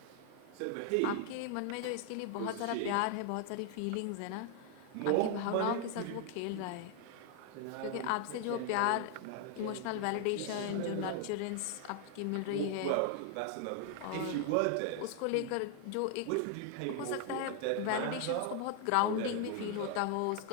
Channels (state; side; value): different; both; correlation 0.00